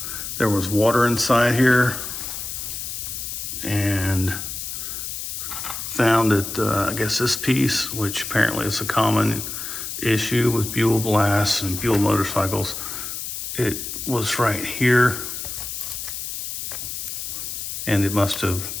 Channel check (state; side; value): noise; left; hiss, 6 dB below the sound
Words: there was water inside here, and found that I guess this piece, which apparently is a common issue with Buell blasts and Buell motorcycles, it was right here, and it must have